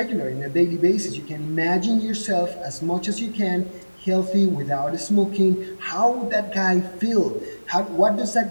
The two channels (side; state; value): both; inverted; correlation -1.00